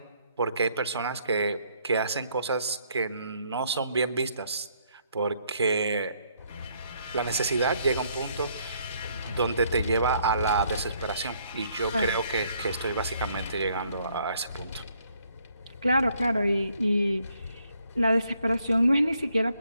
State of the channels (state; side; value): inverted; both; correlation -0.69